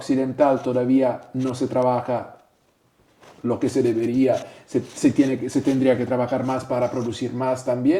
todavía no se trabaja lo que se debería, se tendría que trabajar más para producir más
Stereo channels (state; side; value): identical; both; correlation 1.00